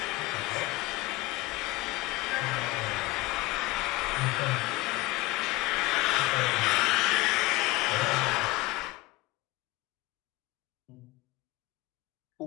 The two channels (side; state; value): right; quieter; 19.6 dB